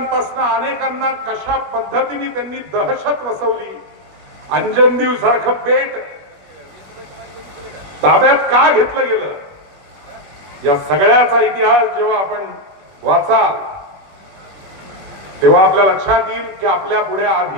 अनेकांना कशा पद्धतीने त्यांनी दहशत वसवली. अंजनदीव सारखं बेट ताब्यात का घेतलं गेलं या सगळ्याचा इतिहास जेव्हा आपण वाचाल तेव्हा आपल्या लक्षात येईल की आपल्या पुढे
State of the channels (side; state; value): left; late; 21 ms